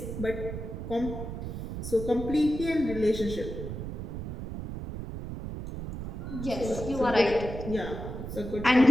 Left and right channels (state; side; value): noise; right; rumble, 7 dB below the sound